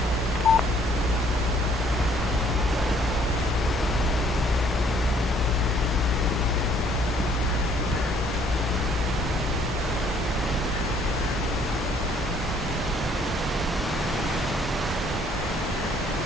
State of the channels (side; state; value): both; normal; correlation 0.62